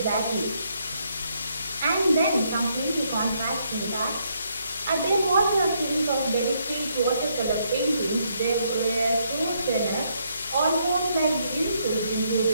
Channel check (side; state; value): both; inverted; correlation -0.74